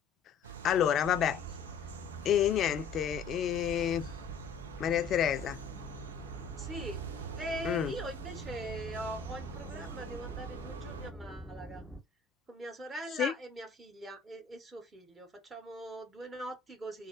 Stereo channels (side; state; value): right; quieter; 6.0 dB